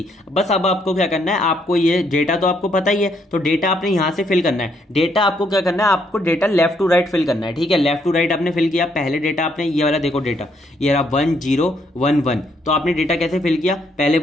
बस अब आपको क्या करना है, आपको ये डेटा तो आपको पता ही है, तो डेटा आपने यहाँ से फिल करना है। डेटा आपको क्या करना है, आपको data left to right fill करना है, ठीक है। लेफ्ट टू राइट आपने फिल किया, पहले डेटा आपने ये वाला देखो डेटा ये रहा 1011, तो आपने डेटा कैसे फिल किया, पहले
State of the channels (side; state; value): both; normal; correlation 0.72